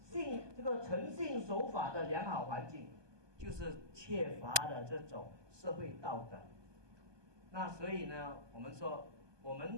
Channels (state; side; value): late; left; 1.2 ms